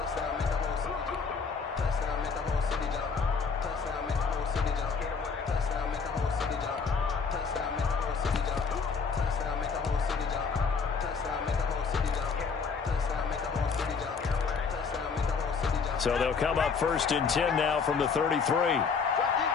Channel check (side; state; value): right; quieter; 5.4 dB